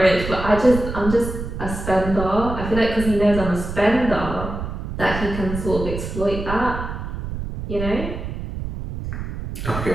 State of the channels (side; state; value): right; noise; rumble, 6 dB below the sound